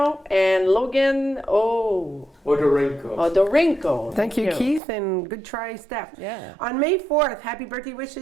and Logan Odorenko. Thank you, Keith, and good try, Steph. Yeah. On May 4th, happy birthday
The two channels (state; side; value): drops out; left; at 4.8 s